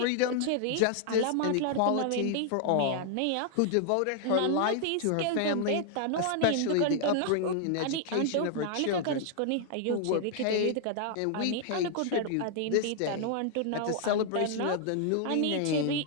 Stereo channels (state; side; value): different; both; correlation -0.01